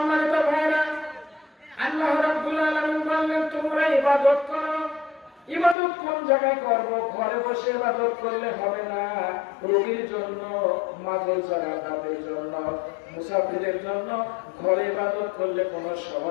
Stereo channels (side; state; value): right; drops out; at 5.8 s